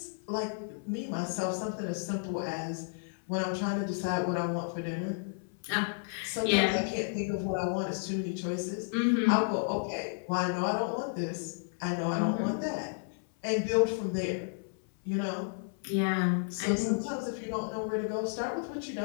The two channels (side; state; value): right; silent; 56 dB below the other